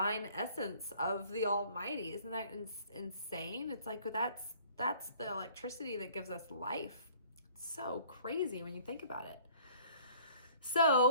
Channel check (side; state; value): both; inverted; correlation -0.54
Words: essence of the Almighty. Isn't that insane? It's like that's the electricity that gives us life. It's so crazy when you think about it.